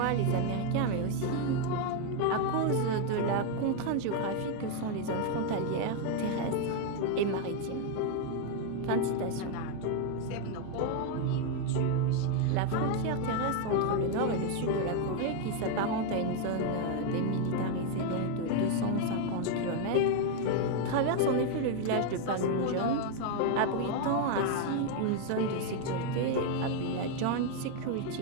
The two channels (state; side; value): different; both; correlation 0.01